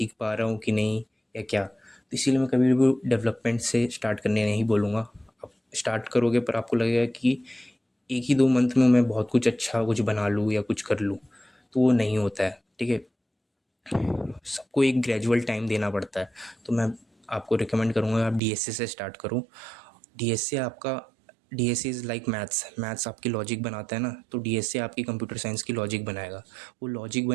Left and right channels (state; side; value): drops out; left; at 18.4 s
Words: पा रहा हूँ कि नहीं या क्या। तो इसीलिए मैं कभी भी डेवलपमेंट से स्टार्ट करने नहीं बोलूँगा। आप स्टार्ट करोगे पर आपको लगेगा कि 1 ही 2 मंथ में मैं बहुत कुछ अच्छा कुछ बना लूँ या कुछ कर लूँ, तो वो नहीं होता है। ठीक है, सबको एक ग्रेजुअल टाइम देना पड़ता है। तो मैं आपको रिकमेंड करूँगा आप डीएसए से स्टार्ट करो। डीएसए आपका DSA is like maths. Maths आपकी लॉजिक बनाता है ना, तो डीएसए आपकी कंप्यूटर साइंस की लॉजिक बनाएगा। वो लॉजिक